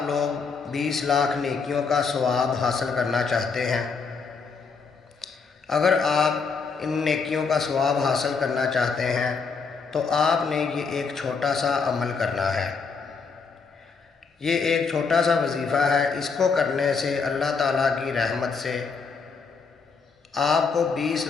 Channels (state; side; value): quieter; right; 5.1 dB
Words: لوگ 20 لاکھ نیکیوں کا ثواب حاصل کرنا چاہتے ہیں؟ اگر آپ ان نیکیوں کا ثواب حاصل کرنا چاہتے ہیں تو آپ نے یہ ایک چھوٹا سا عمل کرنا ہے۔ یہ ایک چھوٹا سا وظیفہ ہے، اس کو کرنے سے اللہ تعالیٰ کی رحمت سے آپ کو 20